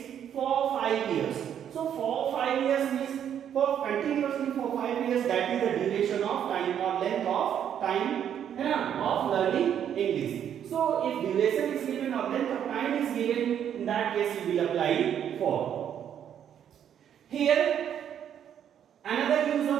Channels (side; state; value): left; quieter; 9.3 dB